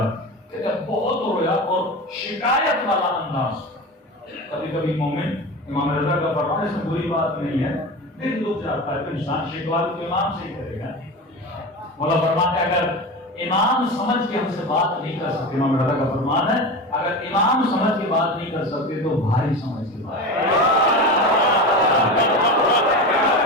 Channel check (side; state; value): both; normal; correlation 0.27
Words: کہتے بہت رویا اور شکایت والا انداز. کبھی کبھی مومن امام رضا کا فرمان اس میں بری بات نہیں ہے، دل دکھ جاتا ہے تو انسان شکوا تو امام سے ہی کرے گا. مولا فرماتے اگر امام سمجھ کے ہم سے بات نہیں کر سکتے، امام رضا کا فرمان ہے اگر امام سمجھ کے بات نہیں کر سکتے تو بھائی سمجھ کے بات.